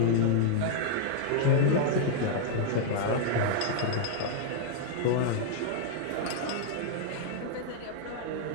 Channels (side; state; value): both; different; correlation -0.01